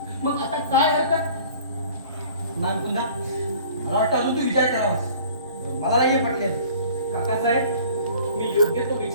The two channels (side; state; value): both; inverted; correlation -0.49